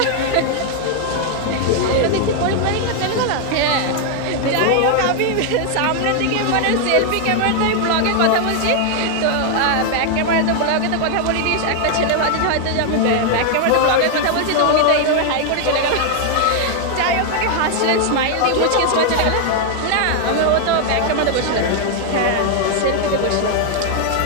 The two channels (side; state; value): both; different; correlation 0.00